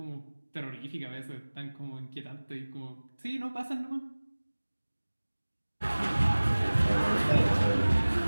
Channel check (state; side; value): inverted; both; correlation -1.00